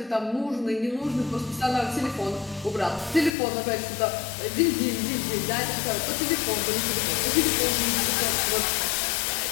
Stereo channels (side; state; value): right; drops out; at 3.3 s